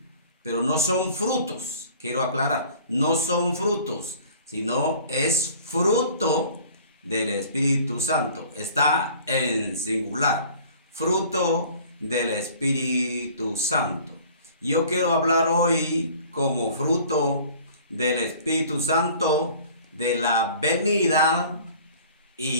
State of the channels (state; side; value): inverted; both; correlation -0.48